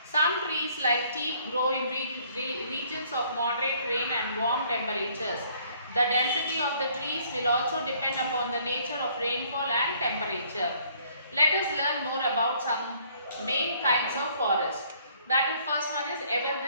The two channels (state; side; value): inverted; both; correlation -0.62